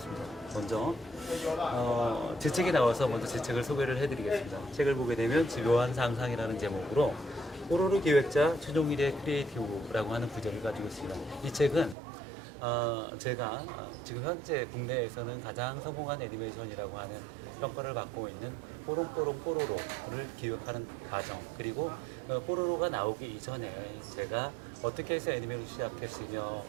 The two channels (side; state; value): left; drops out; at 12.0 s